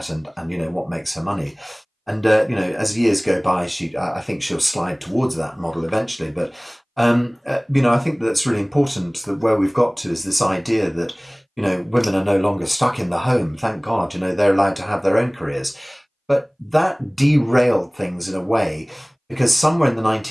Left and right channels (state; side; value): identical; both; correlation 1.00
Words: and what makes her money. And as years go by, I think she'll slide towards that model eventually. But I think that's really important. That where we've got to is this idea that women are no longer stuck in the home. Thank God, they're allowed to have their own careers. But that derailed things in a way, because somewhere in the